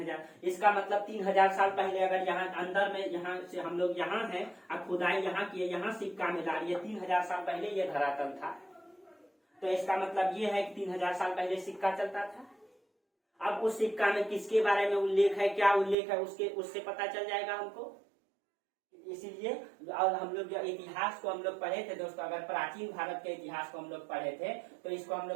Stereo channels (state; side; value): drops out; left; at 16.0 s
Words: इसका मतलब 3000 साल पहले अगर यहाँ अंदर में यहाँ से हम लोग यहाँ हैं और खुदाई यहाँ किए, यहाँ सिक्का मिला, ये 3000 साल पहले ये धरातल था, तो इसका मतलब ये है कि 3000 साल पहले सिक्का चलता था। अब उस सिक्का में किसके बारे में उल्लेख है, क्या उल्लेख है, उससे पता चल जाएगा हमको। इसीलिए और हम लोग जो इतिहास को हम लोग पढ़े थे दोस्तों, अगर प्राचीन भारत के इतिहास को हम लोग पढ़े थे तो इसको हम